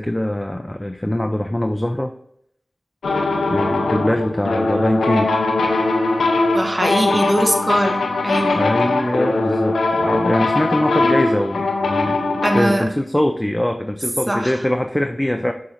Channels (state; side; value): normal; both; correlation 0.95